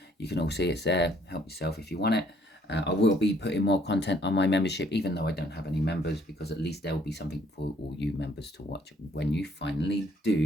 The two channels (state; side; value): normal; both; correlation 0.64